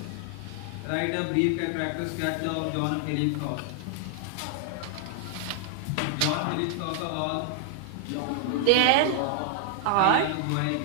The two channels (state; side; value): different; both; correlation 0.00